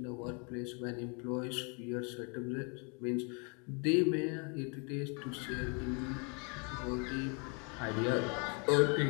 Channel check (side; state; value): right; quieter; 35.9 dB